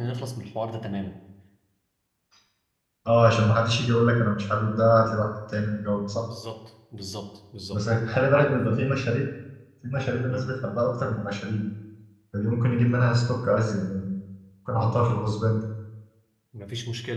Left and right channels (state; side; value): identical; both; correlation 1.00